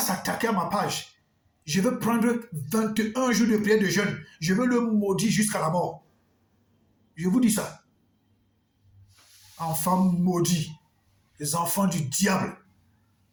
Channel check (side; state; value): both; identical; correlation 1.00